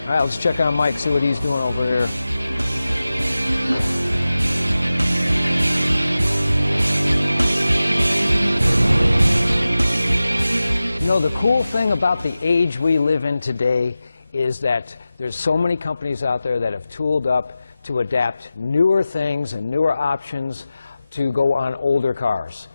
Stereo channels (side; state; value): both; inverted; correlation -0.95